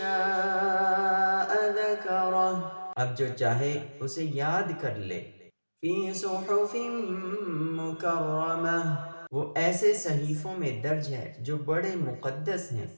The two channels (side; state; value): both; inverted; correlation -1.00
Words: ذَكَرَهُ، اب جو چاہے اسے یاد کر لے۔ فِي صُحُفٍ مُكَرَّمَةٍ، وہ ایسے صحیفوں میں درج ہے جو بڑے مقدس ہیں۔